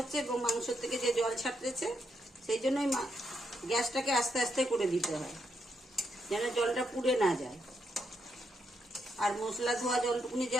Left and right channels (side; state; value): both; normal; correlation 0.80